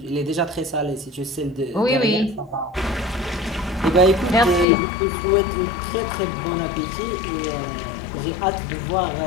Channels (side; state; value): right; drops out; at 4.7 s